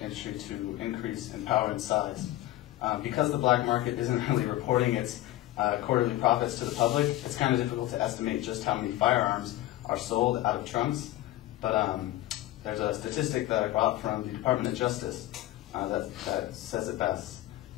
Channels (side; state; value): right; quieter; 15.5 dB